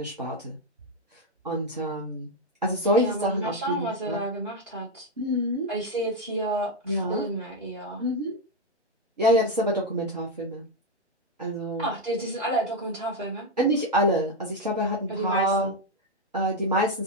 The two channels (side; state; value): both; normal; correlation 0.05